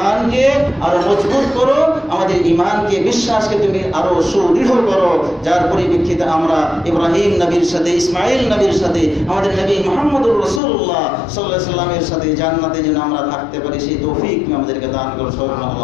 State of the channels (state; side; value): drops out; right; at 10.6 s